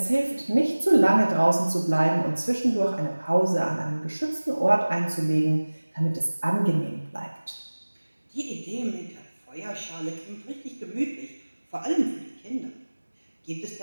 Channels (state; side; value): inverted; both; correlation -1.00